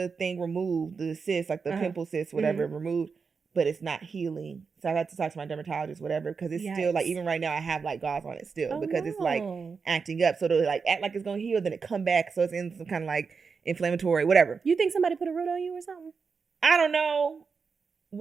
thing removed, the cyst, like the pimple cyst, whatever, removed. But it's not healing. So I got to talk to my dermatologist, whatever, because it's still like, even right now I have like gauze on it still because it's like acting up. So it'll like act like it's gonna heal, then it come back. So it's in some kind of like inflammatory, whatever. You think somebody put a root on you or something? I don't know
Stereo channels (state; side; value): quieter; left; 5.3 dB